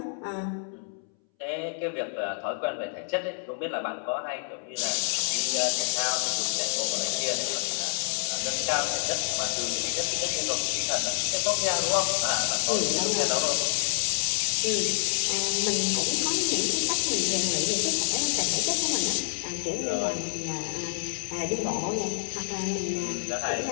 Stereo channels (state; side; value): silent; right; 60 dB below the other